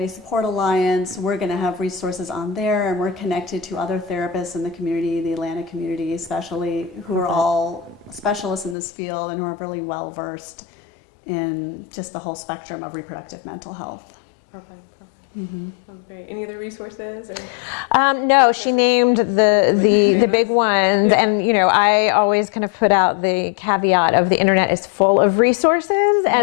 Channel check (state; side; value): drops out; right; at 8.8 s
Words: Support Alliance, we're going to have resources on there, and we're connected to other therapists in the community, the Atlanta community especially, who are all specialists in this field and who are really well versed in just the whole spectrum of reproductive mental health. Perfect. Great. Any other resources? Or no, she named the big ones, and I always kind of put out the caveat of the internet is full of resources,